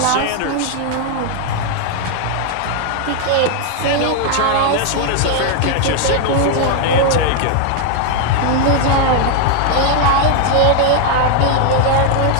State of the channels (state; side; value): different; both; correlation 0.00